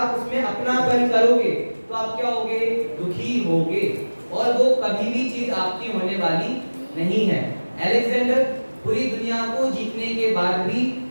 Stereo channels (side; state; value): both; inverted; correlation -1.00